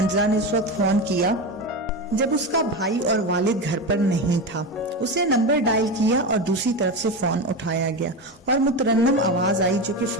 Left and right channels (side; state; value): both; normal; correlation 0.20